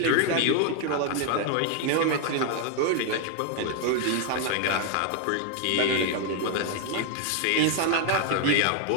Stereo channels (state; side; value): different; both; correlation 0.00